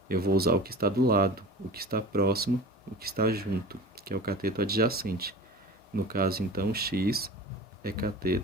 Eu vou usar o que está do lado, o que está próximo, o que está junto, que é o cateto adjacente. No caso, então, x é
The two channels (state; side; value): normal; both; correlation 0.37